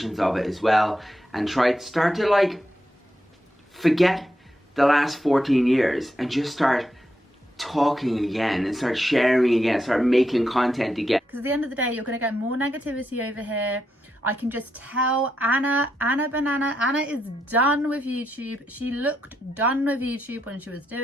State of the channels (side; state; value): both; normal; correlation 0.83